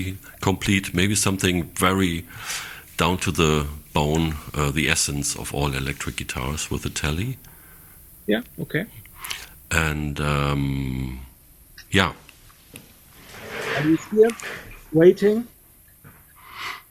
complete. Maybe something very down to the bone, the essence of all electric guitars with a Tele. Yeah, okay. And Are you here waiting?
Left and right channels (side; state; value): both; identical; correlation 1.00